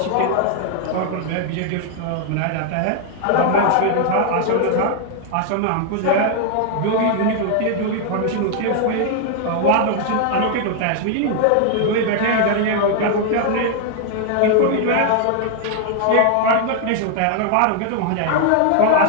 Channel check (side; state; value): both; different; correlation 0.00